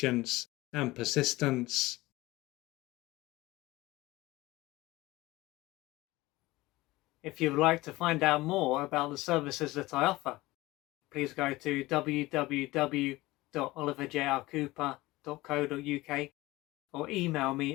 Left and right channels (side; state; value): right; quieter; 19.5 dB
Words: and persistence. If you would like to find out more about the services that I offer, please go to www.oliverjrcooper.co.uk or email